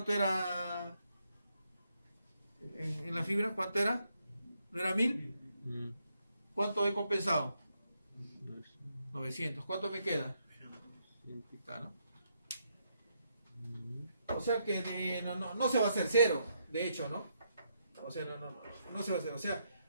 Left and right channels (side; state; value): both; inverted; correlation -0.77